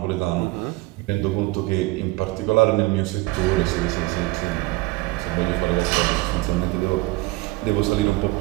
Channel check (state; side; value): quieter; left; 21.4 dB